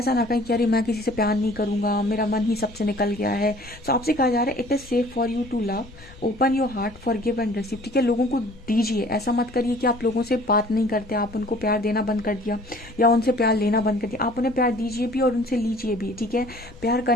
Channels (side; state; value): left; noise; rumble, 21 dB below the sound